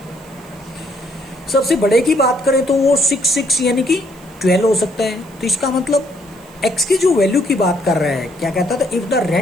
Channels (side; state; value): right; noise; hiss, 26 dB below the sound